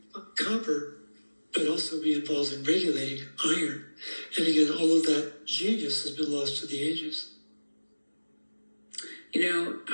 copper, but also be involved in regulating iron. And again, all of that genius has been lost to the ages. You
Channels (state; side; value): inverted; both; correlation -1.00